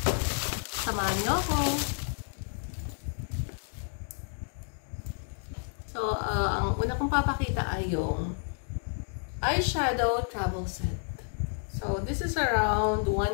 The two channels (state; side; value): silent; right; 58 dB below the other